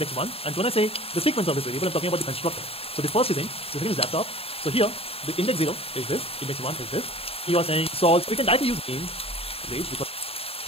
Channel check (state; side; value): late; right; 0.28 ms